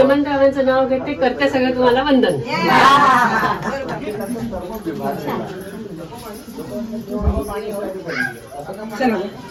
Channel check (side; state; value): both; identical; correlation 1.00